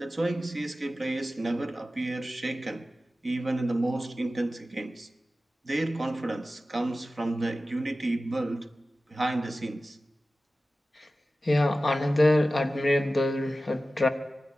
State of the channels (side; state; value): both; normal; correlation 0.95